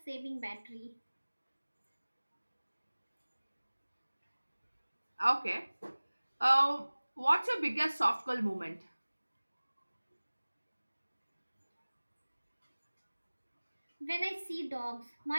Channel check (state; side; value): inverted; both; correlation -1.00